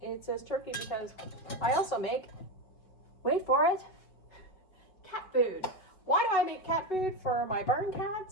It says turkey because I also make, wait for it, cat food. Why do I make cat food for my barn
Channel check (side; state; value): right; late; 5.2 ms